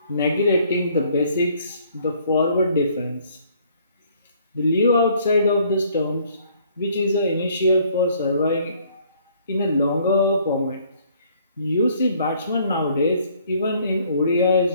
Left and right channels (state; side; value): inverted; both; correlation -0.62